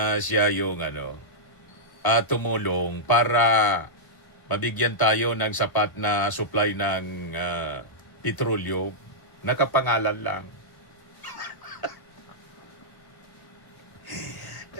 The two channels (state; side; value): late; right; 1.1 ms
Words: siya yung tumulong para mabigyan tayo ng sapat na supply ng petrolyo. Nakapangalan lang.